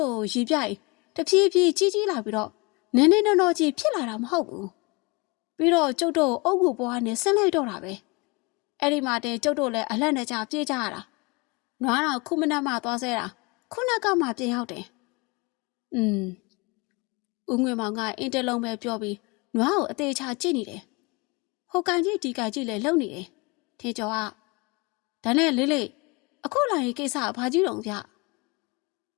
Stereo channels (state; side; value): quieter; right; 27.6 dB